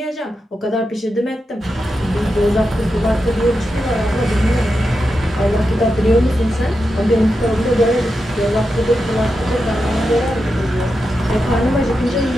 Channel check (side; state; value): both; normal; correlation 0.88